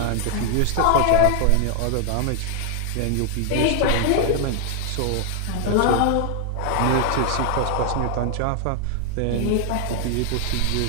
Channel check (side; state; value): both; different; correlation 0.00